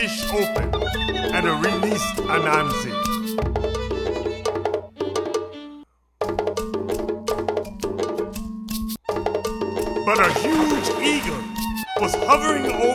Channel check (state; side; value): identical; both; correlation 1.00